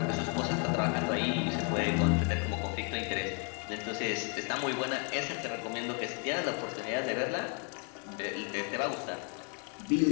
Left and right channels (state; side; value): quieter; right; 36.9 dB